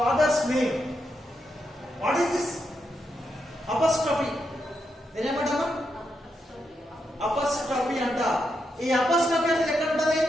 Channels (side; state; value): both; normal; correlation 0.83